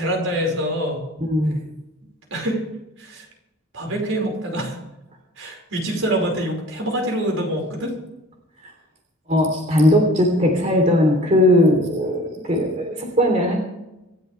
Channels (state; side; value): normal; both; correlation 0.45